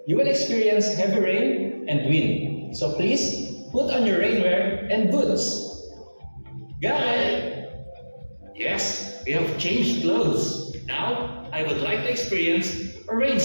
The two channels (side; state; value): both; inverted; correlation -1.00